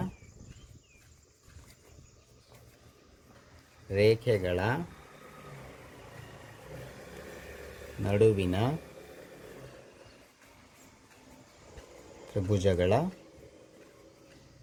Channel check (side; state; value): both; identical; correlation 1.00